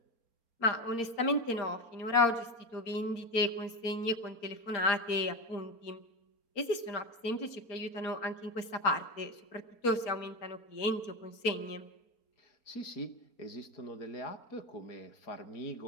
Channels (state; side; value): late; right; 4.3 ms